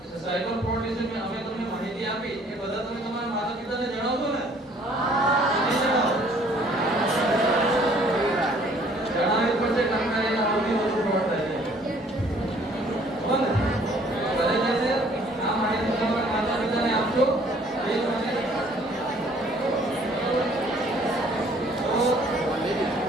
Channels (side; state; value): both; normal; correlation 0.58